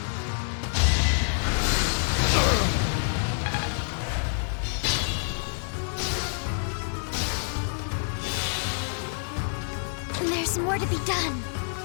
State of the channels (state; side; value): silent; right; digital silence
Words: There's more to be done.